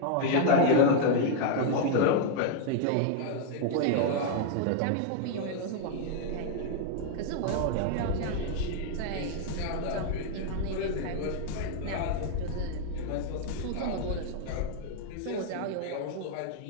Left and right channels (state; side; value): different; both; correlation 0.00